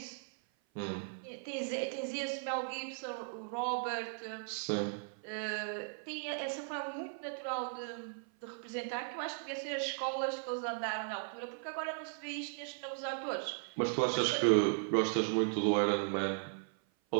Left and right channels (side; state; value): left; silent; 53 dB below the other